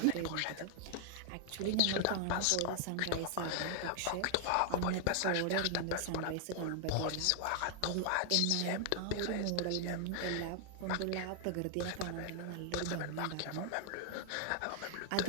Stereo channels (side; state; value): both; different; correlation 0.00